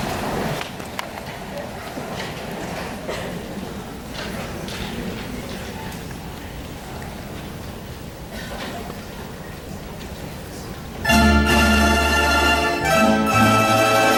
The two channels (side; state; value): both; identical; correlation 1.00